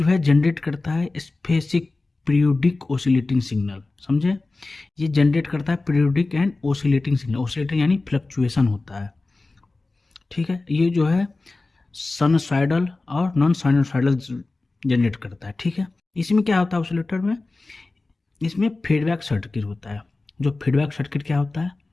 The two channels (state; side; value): quieter; right; 3.3 dB